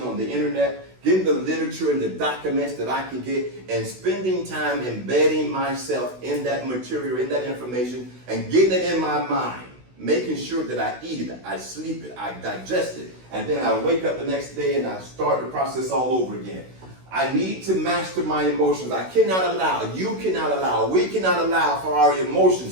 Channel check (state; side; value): late; left; 16 ms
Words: on the internet, getting the literature and the documents that I can get, and spending time embedding myself in that material, in that information, and getting it in my mind, making sure that I eat it, I sleep it, I digest it, and then I wake up the next day and I start the process all over again. I need to master my emotions. I cannot allow, you cannot allow, we cannot allow for our